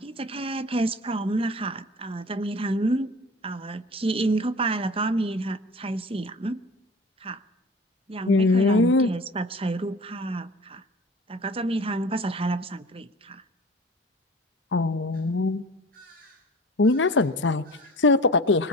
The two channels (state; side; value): normal; both; correlation 0.41